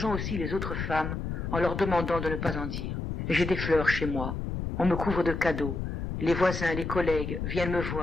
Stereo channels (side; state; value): left; noise; rumble, 4 dB below the sound